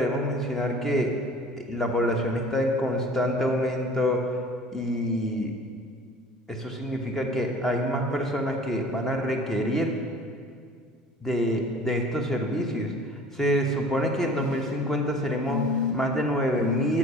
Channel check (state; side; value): normal; both; correlation 0.46